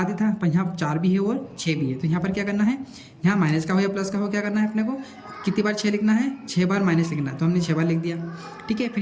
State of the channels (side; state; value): both; identical; correlation 1.00